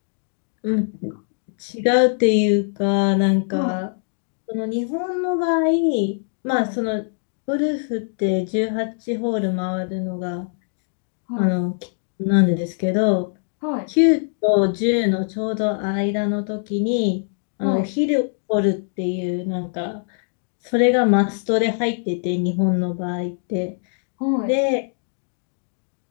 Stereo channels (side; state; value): right; silent; digital silence